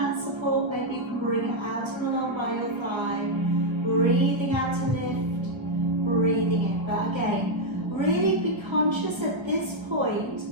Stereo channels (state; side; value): late; left; 1.2 ms